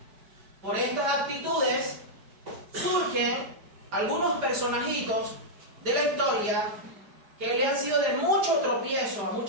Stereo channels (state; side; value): late; left; 4.9 ms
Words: Por estas actitudes surgen algunos personajitos de la historia que le han sido de mucho tropiezo a